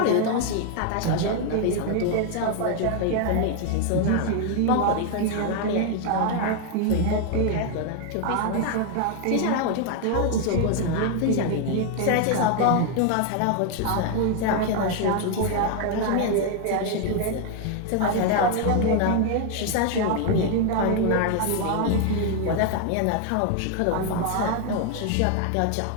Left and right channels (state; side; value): different; both; correlation 0.00